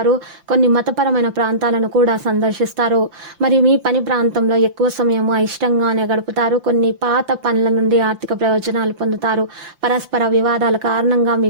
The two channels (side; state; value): left; late; 5.8 ms